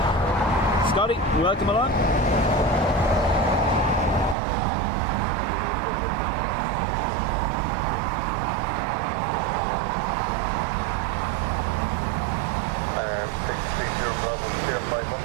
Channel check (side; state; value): left; drops out; at 4.4 s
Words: Scotty, welcome along.